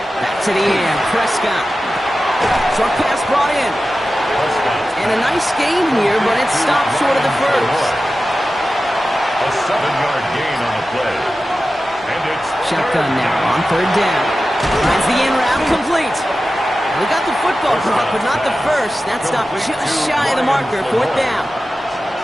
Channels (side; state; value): both; normal; correlation 0.94